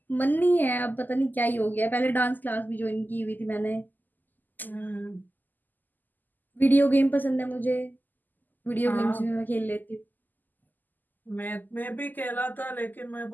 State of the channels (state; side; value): late; right; 0.086 ms